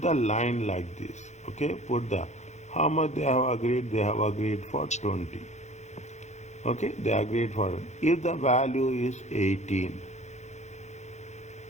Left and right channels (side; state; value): right; late; 0.33 ms